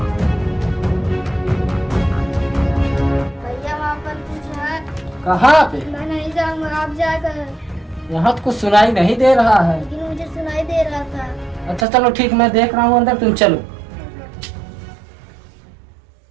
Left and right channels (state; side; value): drops out; left; at 11.9 s